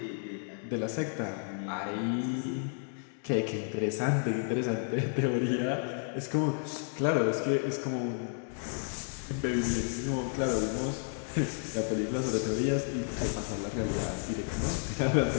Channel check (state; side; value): silent; right; 57 dB below the other